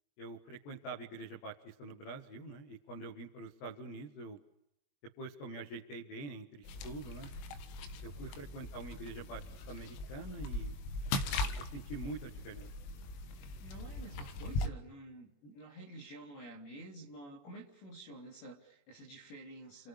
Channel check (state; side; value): late; right; 22 ms